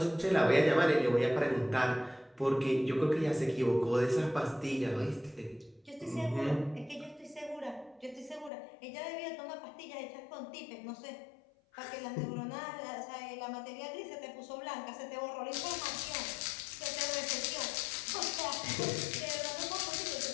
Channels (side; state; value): right; drops out; at 8.5 s